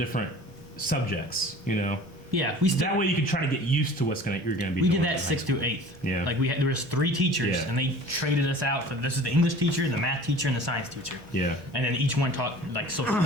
subjects, you know? Yeah, we still That way you can try to get used to you're gonna be we doing. did that in high 6th school. to 8th. Yeah. Like there was 3 teachers, Yeah. and they traded us out for this is the English teacher, the math teacher, and the science teacher. Yeah. And then each one taught like social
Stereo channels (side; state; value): both; normal; correlation 0.44